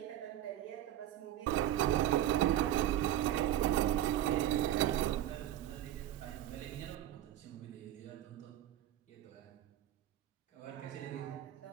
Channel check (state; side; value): quieter; left; 12.5 dB